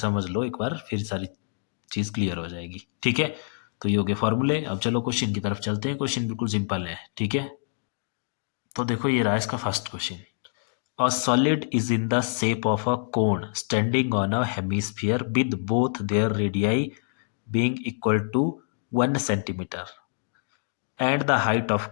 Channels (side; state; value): right; silent; digital silence